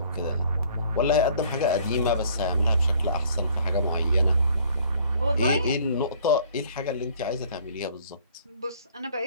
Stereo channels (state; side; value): inverted; both; correlation -0.56